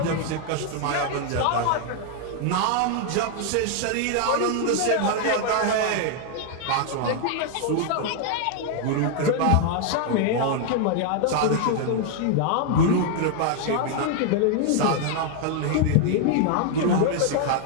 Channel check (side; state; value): both; different; correlation 0.00